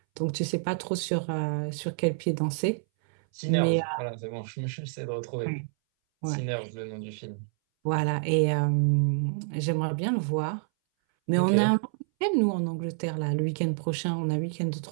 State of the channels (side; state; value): left; silent; 59 dB below the other